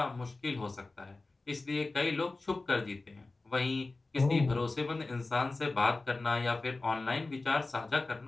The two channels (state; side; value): quieter; right; 3.4 dB